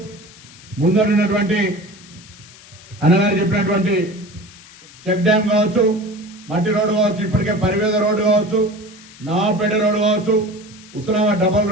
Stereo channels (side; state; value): left; noise; hiss, 21 dB below the sound